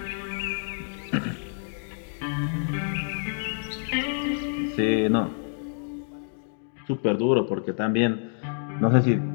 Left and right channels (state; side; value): silent; right; digital silence